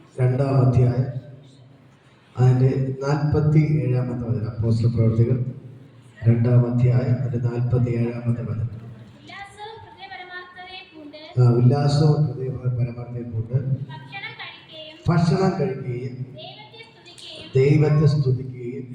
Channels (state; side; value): identical; both; correlation 1.00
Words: 2-ാം അധ്യായം അതിൻ്റെ 47-ാമത്തെ വചനം. അപ്പോസ്തല പ്രവർത്തികൾ 2-ാം അധ്യായം അതിൻ്റെ 47-ാമത്തെ വചനം. ഉല്ലാസവും ഹൃദയ പരമാർത്ഥതയെ കൊണ്ട് ഭക്ഷണം കഴിക്കുകയും ദൈവത്തെ സ്തുതിക്കുകയും